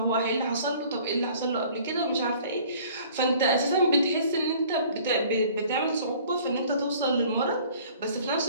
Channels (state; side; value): inverted; both; correlation -0.51